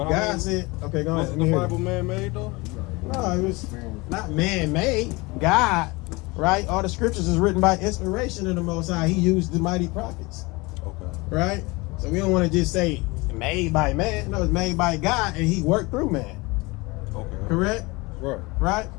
God said, okay, go on. Wasn't the Bible man-made though? No, it was not man-made. God, right? All the scriptures is written by inspiration of the Most High. He used the mighty prophets. Okay. Right? So we don't want to just say made by man. No, it's made by God, and He worked through man. Okay. Correct? Right. Right?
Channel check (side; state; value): right; quieter; 24.3 dB